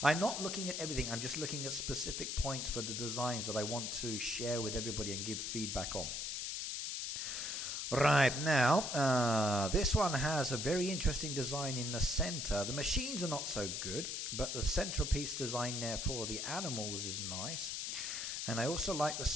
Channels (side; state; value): left; noise; hiss, 3 dB below the sound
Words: I'm not looking at everything. I'm just looking at specific points for the designs that I want to share with everybody and give feedback on. Right, now, this one has a very interesting design in the center. The machines are not so good, but the centerpiece design there for the animals is nice. And I also like the